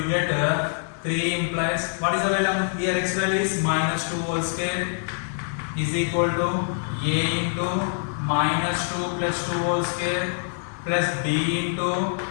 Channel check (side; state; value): right; silent; digital silence